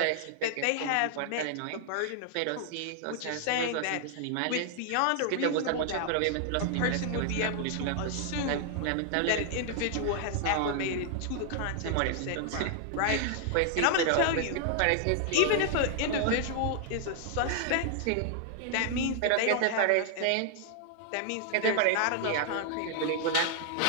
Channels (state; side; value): different; both; correlation 0.00